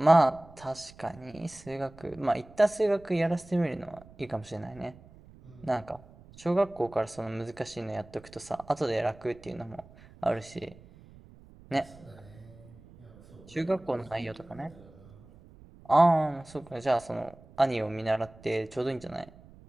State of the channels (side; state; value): right; noise; rumble, 22 dB below the sound